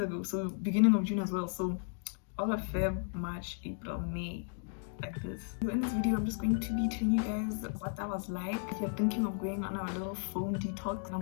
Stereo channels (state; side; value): silent; right; 55 dB below the other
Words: ago, so beginning of June as well. So all of Feb, March, April, May, like this. So in this video, I'm just going to be telling you guys what that was like. If you're thinking of going on a little phone detox,